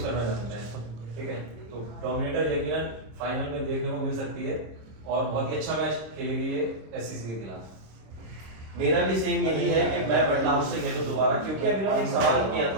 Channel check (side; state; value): left; late; 26 ms